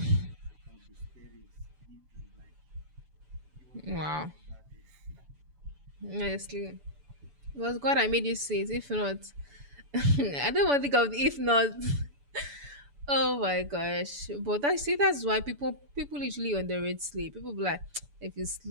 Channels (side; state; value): left; late; 7.0 ms